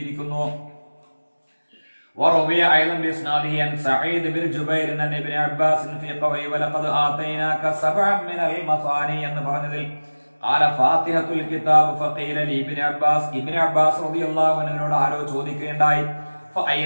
وروي ايضا باسناده عن سعيد بن جبير عن ابن عباس في قوله ولقد آتيناك سبعا من المثاني എന്ന് പറഞ്ഞതിൽ قال فاتحة الكتاب فقيل لي ابن عباس, ഇബ്നു അബ്ബാസ് റളിയല്ലാഹു അൻഹുവിനോട് ആരോ ചോദിക്കുകയുണ്ടായി,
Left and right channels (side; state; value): both; inverted; correlation -1.00